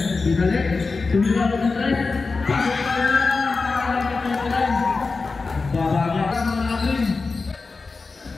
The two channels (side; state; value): right; quieter; 4.1 dB